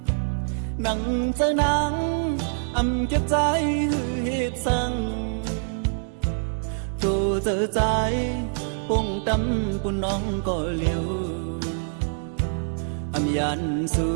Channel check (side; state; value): left; silent; digital silence